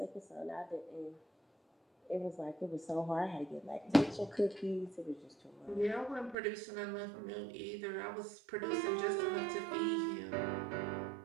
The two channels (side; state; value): left; drops out; at 6.4 s